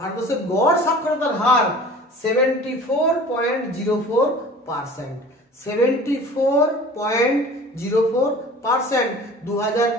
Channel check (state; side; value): normal; both; correlation 0.43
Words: গড় সাক্ষরতার হার 74.04%। 74.04%